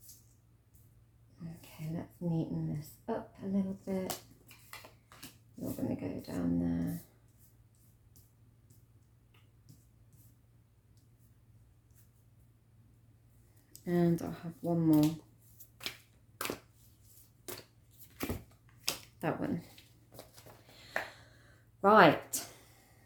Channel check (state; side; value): identical; both; correlation 1.00